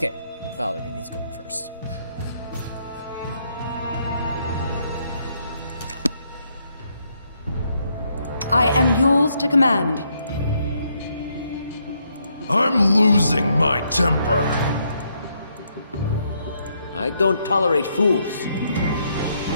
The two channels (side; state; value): both; inverted; correlation -0.75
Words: Valerie needs going first. I am yours to command. I'm losing my temper. I don't tolerate fools.